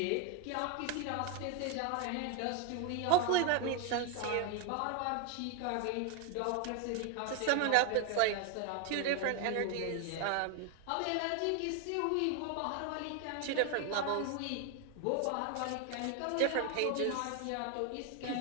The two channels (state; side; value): different; both; correlation 0.01